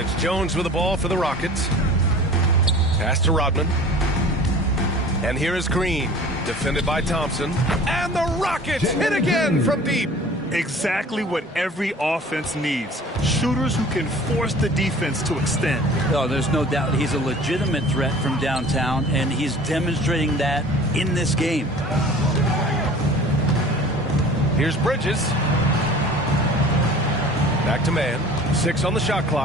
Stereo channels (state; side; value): normal; both; correlation 0.44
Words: Jones with the ball for the Rockets. Pass to Rodman. And here is Green, defended by Thompson. And the Rockets hit again from deep. Exactly what every offense needs. Shooters who can force the defense to extend. Oh, there's no doubt he's a legitimate threat from downtown, and he's demonstrating that in this game. Here's Bridges. Back to man. 6 on the shot